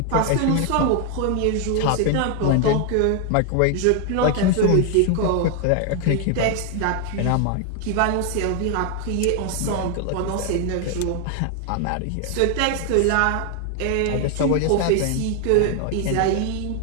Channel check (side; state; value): both; different; correlation 0.00